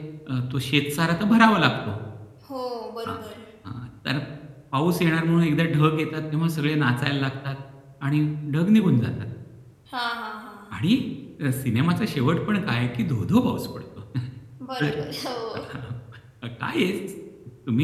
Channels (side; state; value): both; identical; correlation 1.00